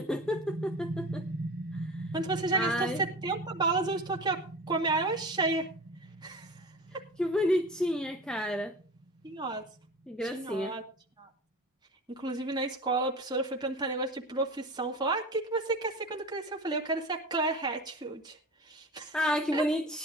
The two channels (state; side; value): normal; both; correlation 0.33